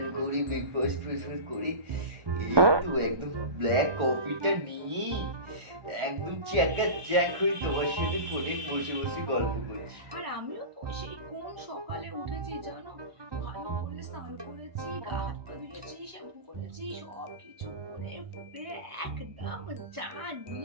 করি, ব্রেকফাস্ট ফ্রেকফাস্ট করি, এই তো একদম ব্ল্যাক কফিটা নিয়ে একদম চ্যাকা চ্যাক হয়ে তোমার সাথে ফোনে বসে বসে গল্প করছি। আর আমিও তো সেই কোন সকালে উঠেছি জানো, ভালো করে স্নান করেছি, গা হাত পা ধুয়েছি, শ্যাম্পু করেছি, সব কিছু করে ফুলে একদম চা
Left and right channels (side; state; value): left; late; 1.2 ms